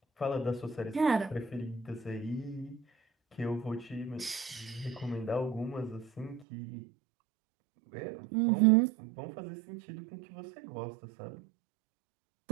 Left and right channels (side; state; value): left; drops out; at 6.5 s